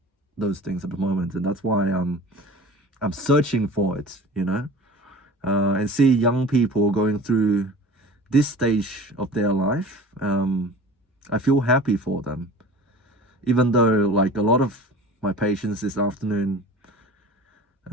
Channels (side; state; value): both; normal; correlation 0.40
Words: those things at the moment, and that's why I'm searching for it, and see young people going through this stage of their life. I feel happy for them, even though like a lot of my patients this afternoon,